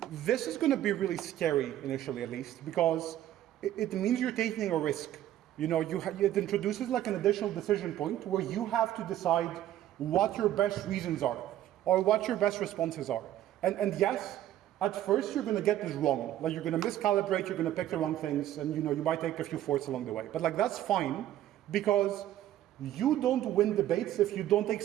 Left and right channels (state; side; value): quieter; left; 12.6 dB